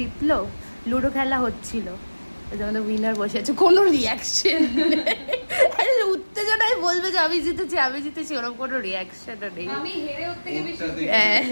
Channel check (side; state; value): both; inverted; correlation -1.00